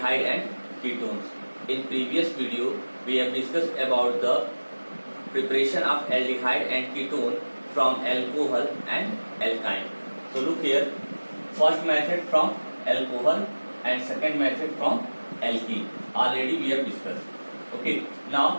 and ketones. In previous video, we have discussed about the preparation of aldehyde and ketone from alcohol and alkyne. So look here, first method from alcohol and second method from alkene. Already we have discussed. Okay,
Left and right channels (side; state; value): both; inverted; correlation -1.00